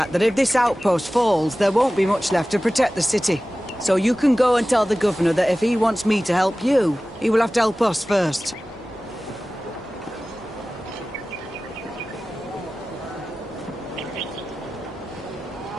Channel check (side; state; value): both; normal; correlation 0.96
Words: that if this outpost falls, there won't be much left to protect the city. So you can go and tell the governor that if he wants me to help you, he will have to help us first.